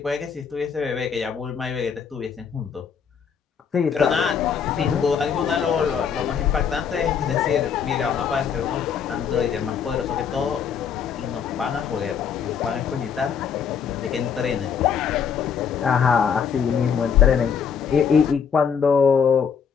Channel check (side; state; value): right; quieter; 7.0 dB